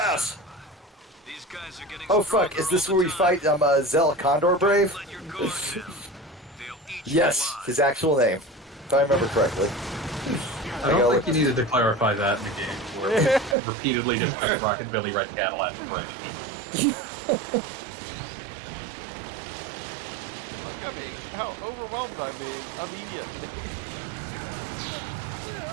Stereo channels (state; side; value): drops out; left; at 13.6 s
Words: These guys are getting Oh fuck, is this where we fight Zell Condor Brave? Yes, his actual name. If I remember correctly. I don't think you needed to clarify that in the game, where we repeatedly discuss Rockabilly Red Cadillac. Look at me, how overwhelmed I'm being immediately.